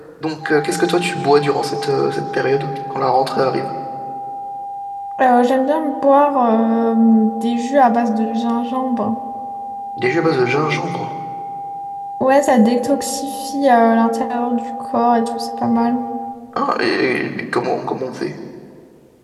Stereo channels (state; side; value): identical; both; correlation 1.00